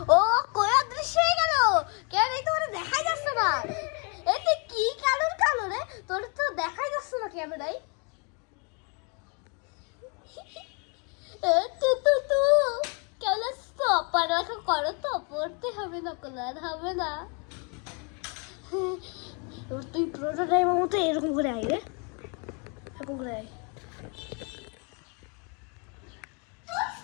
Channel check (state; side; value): quieter; right; 35.0 dB